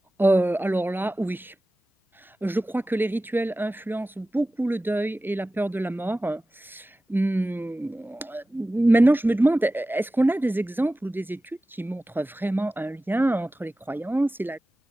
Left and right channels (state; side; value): normal; both; correlation 0.96